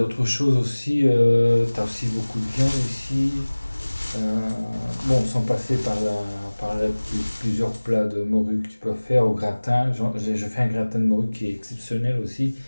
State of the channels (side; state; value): both; inverted; correlation -1.00